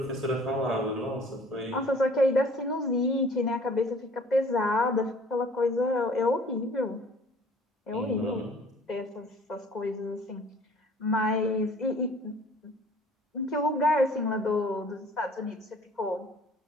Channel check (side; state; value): both; normal; correlation 0.52